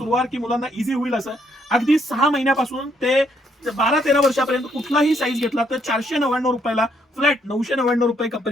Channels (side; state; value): both; normal; correlation 0.72